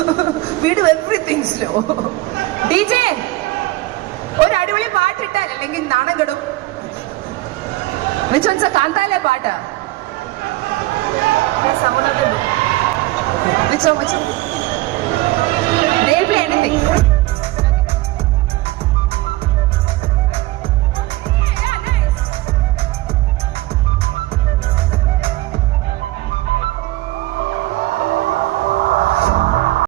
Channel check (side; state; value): left; quieter; 18.5 dB